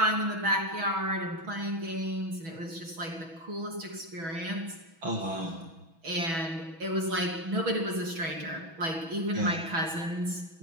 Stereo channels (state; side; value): late; left; 6.1 ms